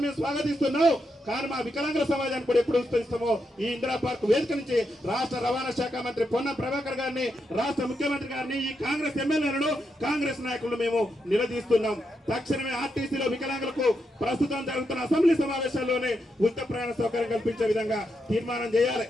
మేము స్వాగతిస్తున్నాం, కానీ మా వికలాంగుల సమాజానికి కూడా ఎప్పుడు ఉచితం ఈ ఇందిరా పార్క్ వేదిక నుంచి రాష్ట్ర రవాణా శాఖ మంత్రి పొన్నం ప్రభాకర్ గారిని, రాష్ట్ర ముఖ్యమంత్రి గారిని, ఈ కాంగ్రెస్ ఎమ్మెల్యేలను, కాంగ్రెస్ నాయకులను మేము నిలదీస్తున్నాం. తక్షణమే ఆర్టీసీలో వికలాంగులకు ప్రస్తుతం జరుగుతున్న అసెంబ్లీ సమావేశాల్లోనే ఉచిత ప్రయాణ సౌకర్యం కల్పించే విధంగా తీర్మానం చేయాలి.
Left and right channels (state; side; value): normal; both; correlation 0.83